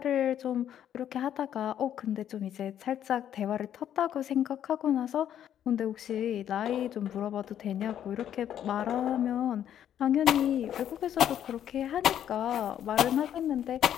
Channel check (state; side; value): quieter; right; 10.2 dB